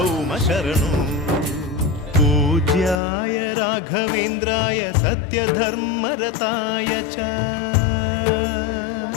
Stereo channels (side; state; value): right; drops out; at 3.0 s